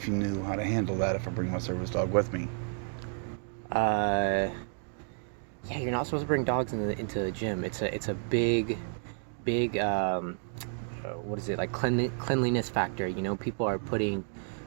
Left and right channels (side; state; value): left; silent; 57 dB below the other